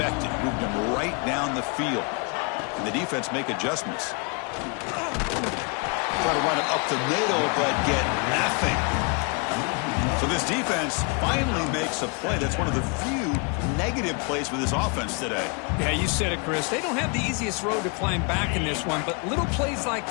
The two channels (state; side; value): quieter; right; 33.8 dB